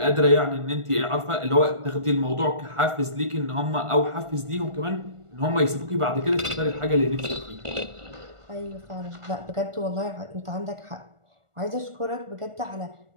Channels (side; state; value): left; late; 1.4 ms